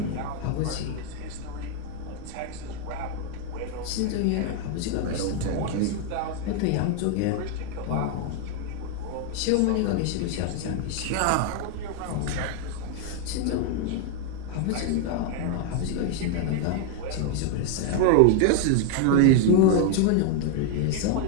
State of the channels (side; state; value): both; different; correlation 0.00